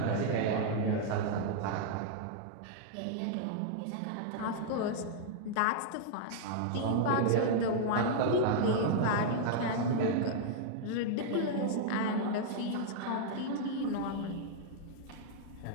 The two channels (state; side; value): different; both; correlation -0.01